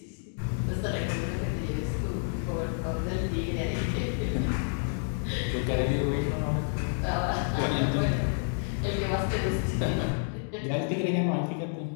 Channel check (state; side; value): silent; right; 58 dB below the other